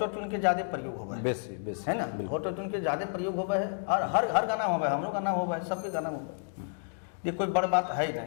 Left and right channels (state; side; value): silent; right; digital silence